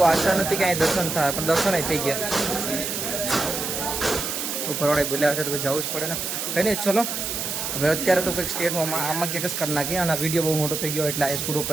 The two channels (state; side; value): noise; right; hiss, 3 dB below the sound